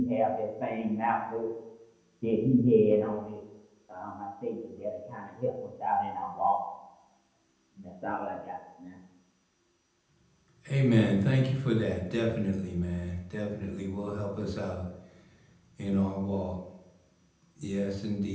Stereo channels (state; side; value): identical; both; correlation 1.00